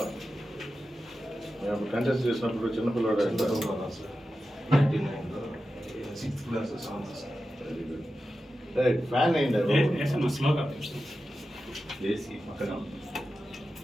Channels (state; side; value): normal; both; correlation 0.92